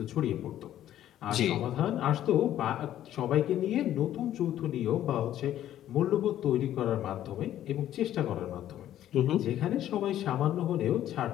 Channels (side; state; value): right; quieter; 12.1 dB